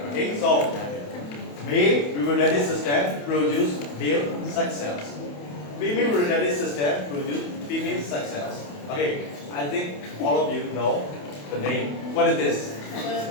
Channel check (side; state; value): right; late; 28 ms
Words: Okay, so male reproductive system produce male sex cells. Female reproductive system produce female sex cells. Okay, I think all of you know the name. What is this?